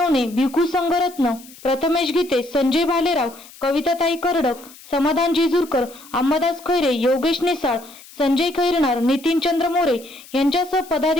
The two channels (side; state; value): left; noise; hiss, 21 dB below the sound